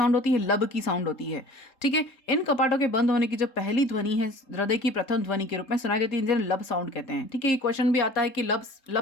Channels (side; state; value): right; late; 3.7 ms